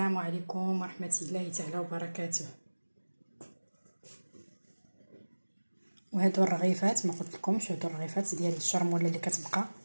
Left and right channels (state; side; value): inverted; both; correlation -1.00